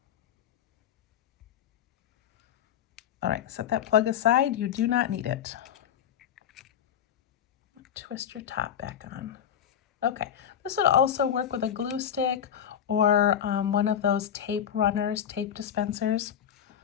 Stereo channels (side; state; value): right; quieter; 9.2 dB